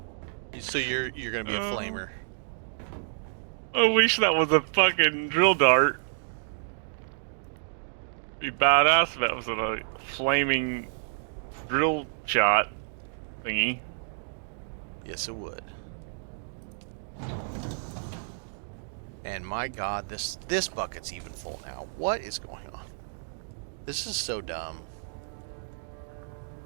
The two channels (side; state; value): left; silent; digital silence